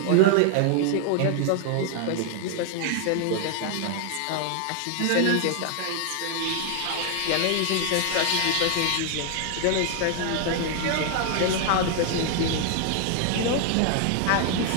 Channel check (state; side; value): different; both; correlation 0.00